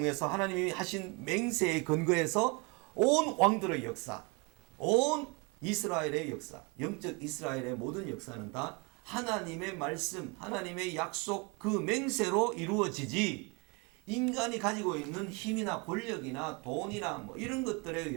하나님이 하신 맹세에 근거해서 온 왕들의 역사 온 이스라엘의 역사 영적 이스라엘의 모든 역사는 다 하나님의 말씀 하나님의 약속 그 맹세로 이루어지지 인간이 가지고 있는 힘이나 권력이나 돈이나 뭐 이런 것들에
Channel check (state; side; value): quieter; left; 30.2 dB